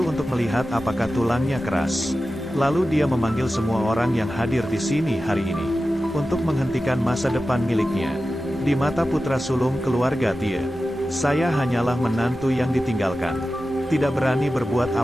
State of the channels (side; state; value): both; normal; correlation 0.94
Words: untuk melihat apakah tulangnya keras. Lalu dia memanggil semua orang yang hadir di sini hari ini untuk menghentikan masa depan miliknya. Di mata putra sulung keluarga Tie, saya hanyalah menantu yang ditinggalkan. Tidak berani berbuat